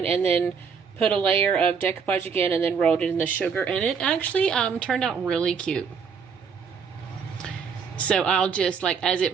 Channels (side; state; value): left; quieter; 6.2 dB